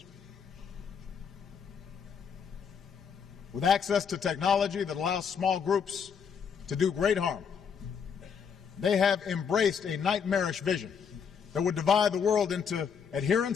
With access to technology that allows small groups to do great harm, they have embraced a nightmarish vision that would divide the world into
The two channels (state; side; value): quieter; right; 6.8 dB